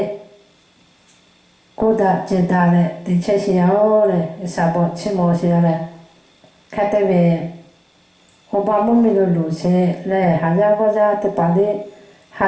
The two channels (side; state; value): both; identical; correlation 1.00